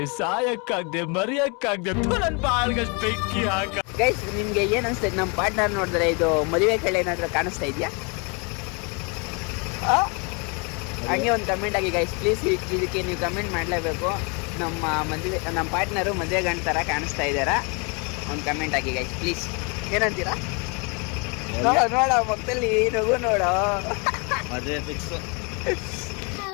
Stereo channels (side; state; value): right; quieter; 32.8 dB